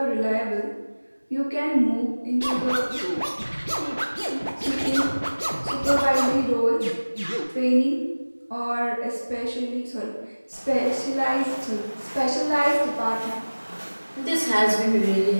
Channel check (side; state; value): both; inverted; correlation -1.00